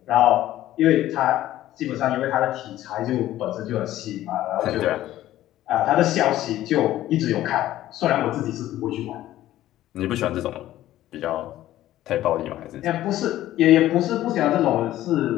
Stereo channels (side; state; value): right; quieter; 14.1 dB